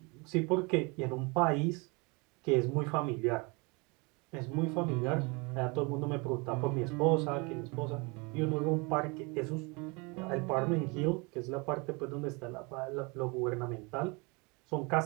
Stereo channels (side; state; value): left; quieter; 29.0 dB